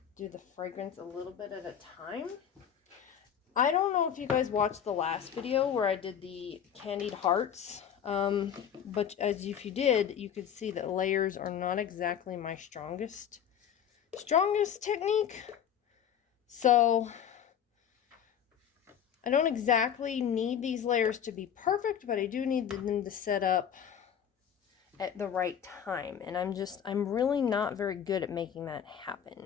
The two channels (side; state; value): right; quieter; 8.7 dB